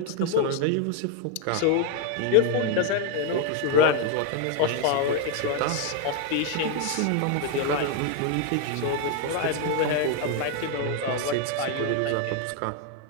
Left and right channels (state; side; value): different; both; correlation 0.01